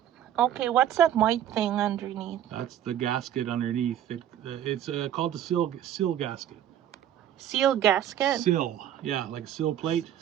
Okay, what's that white thing underneath? That's the gasket underneath. It's called the sill gasket. Seal gasket? Sill, yeah, like a sill plate,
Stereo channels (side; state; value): left; quieter; 10.9 dB